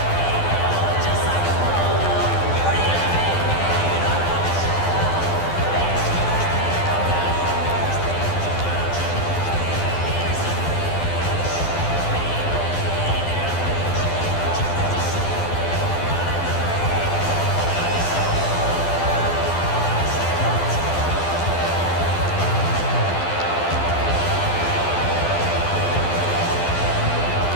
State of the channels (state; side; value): late; right; 12 ms